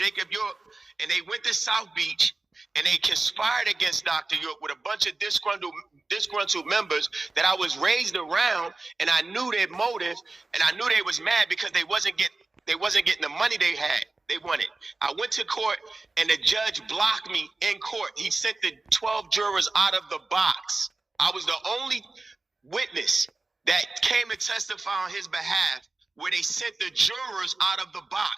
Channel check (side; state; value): left; quieter; 3.3 dB